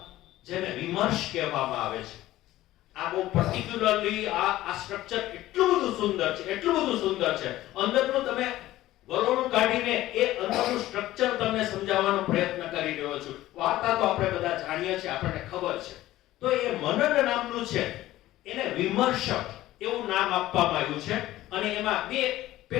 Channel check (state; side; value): quieter; right; 15.5 dB